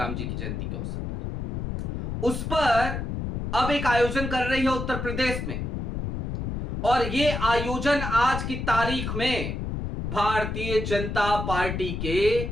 जी की जयंती के अवसर पर, उस पर अब एक आयोजन कर रही है उत्तर प्रदेश में, और यह आयोजन आज की तारीख में भारतीय जनता पार्टी के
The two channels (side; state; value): left; noise; rumble, 3 dB below the sound